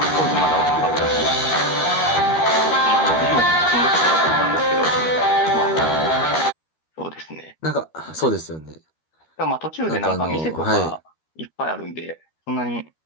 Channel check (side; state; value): right; late; 13 ms